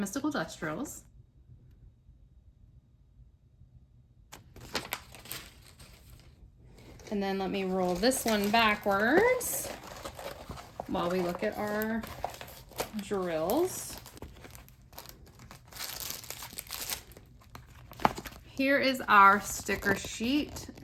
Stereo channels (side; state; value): both; identical; correlation 1.00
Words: dust drills. And then let me roll this one backwards while we look at our drills. Here is our sticker sheet.